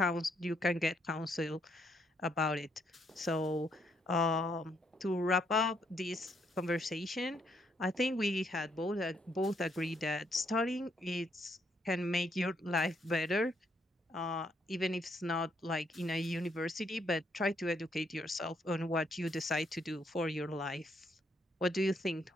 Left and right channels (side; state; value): both; normal; correlation 0.73